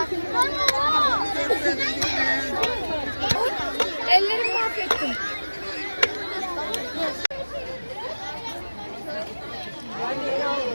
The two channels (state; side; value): inverted; both; correlation -1.00